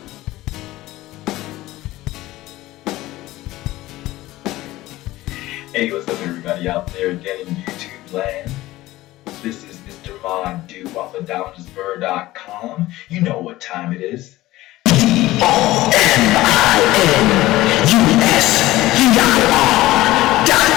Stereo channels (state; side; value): quieter; right; 17.2 dB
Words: Hey, what's up everybody out there again in YouTube land? This is Mr. Madu off of downsbur.com. You know what time it is. DOMINUSUR.com.